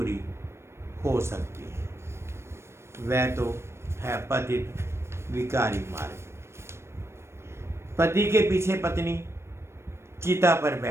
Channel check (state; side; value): late; left; 0.13 ms